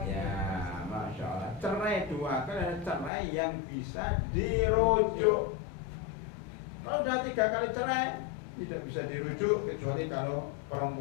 Ya, Masya Allah. Cerai 2 kali adalah cerai yang bisa dirujuk. Kalau sudah 3 kali cerai, tidak bisa dirujuk kecuali kalau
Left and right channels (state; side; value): drops out; right; at 3.1 s